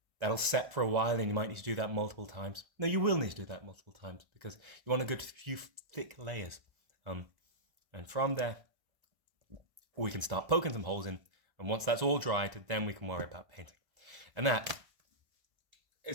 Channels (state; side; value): late; left; 1.3 ms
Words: set for a while, and you might need to do that multiple times. No, you will need to do that multiple times because you want a good few thick layers. And from there, we can start poking some holes in. And once that's all dried, then we can worry about painting. And that